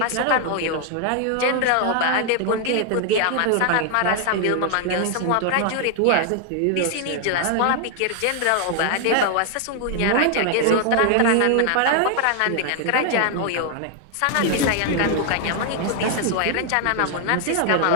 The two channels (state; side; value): different; both; correlation 0.00